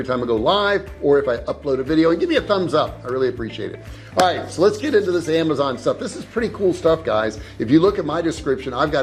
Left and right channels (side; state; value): both; identical; correlation 1.00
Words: time I go live or if I upload a video, and give me a thumbs up. I really appreciate it. All right, so let's get into this Amazon stuff. This is pretty cool stuff, guys. If you look at my description, I've